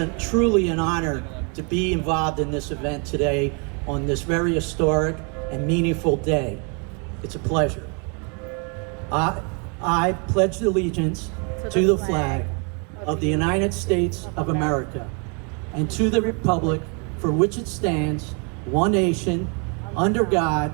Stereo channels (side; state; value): left; quieter; 35.9 dB